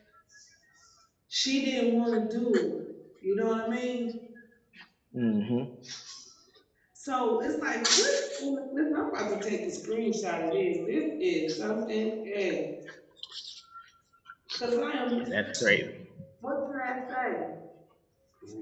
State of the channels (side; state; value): both; identical; correlation 1.00